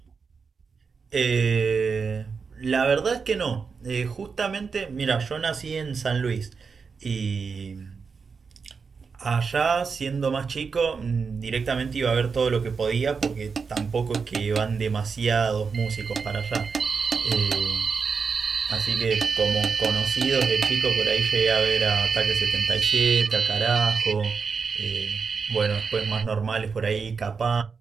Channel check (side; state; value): left; quieter; 5.4 dB